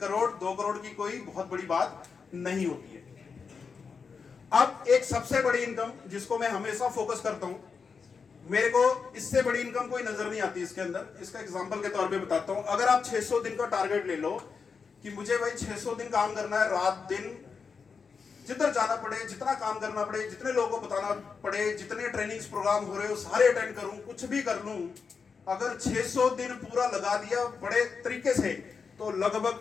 2 करोड़ की कोई बहुत बड़ी बात नहीं होती है। अब एक सबसे बड़ी इनकम जिसको मैं हमेशा फोकस करता हूं, मेरे को इससे बड़ी इनकम कोई नजर नहीं आती इसके अंदर। इसका एग्जांपल के तौर पे बताता हूं। अगर आप 600 दिन का टारगेट ले लो कि मुझे भाई 600 दिन काम करना है, रात दिन जिधर जाना पड़े, जितना काम करना पड़े, जितने लोगों को बताना पड़े, जितने ट्रेनिंग्स प्रोग्राम हो रहे हो सारे अटेंड करूं, कुछ भी कर लूं, अगर 600 दिन पूरा लगा दिया बड़े तरीके से तो लगभग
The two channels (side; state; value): right; quieter; 5.5 dB